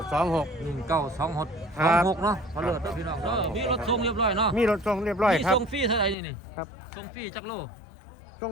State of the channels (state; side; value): drops out; right; at 6.2 s